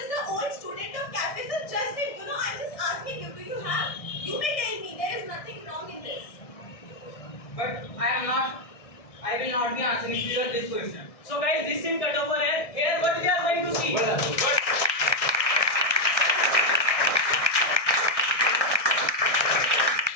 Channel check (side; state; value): right; late; 1.6 ms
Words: the old student of cafe. So just it, I'm just asking you, do you have? You may tell me. There is nothing wrong in this. But I will not be answering to your this question. So guys, this thing cut over here. Here what we are going to see. Well done. Good.